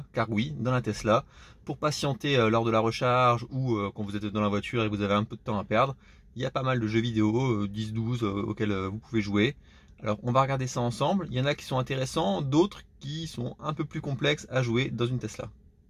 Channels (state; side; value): identical; both; correlation 1.00